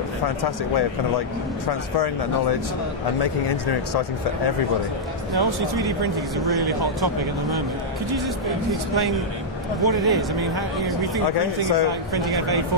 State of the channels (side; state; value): both; normal; correlation -0.06